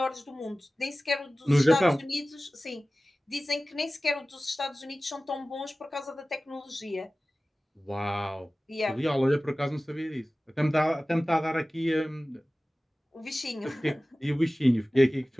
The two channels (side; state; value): both; normal; correlation 0.97